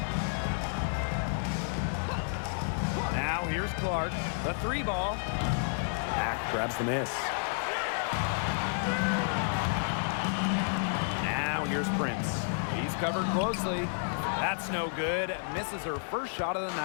Now here's Clark. The three ball. Mack grabs the miss. Now here's Prince. He's covered closely. That's no good. Misses her first shot of the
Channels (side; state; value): right; silent; 57 dB below the other